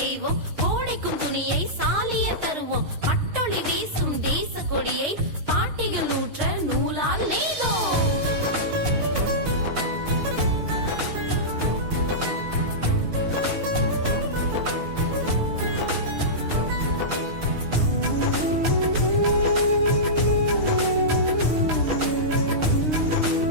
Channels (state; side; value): late; left; 6.4 ms